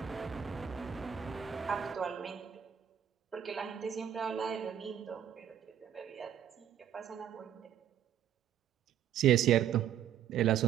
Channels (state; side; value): quieter; left; 9.7 dB